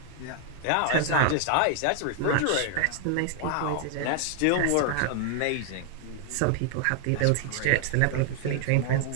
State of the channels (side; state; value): both; different; correlation 0.00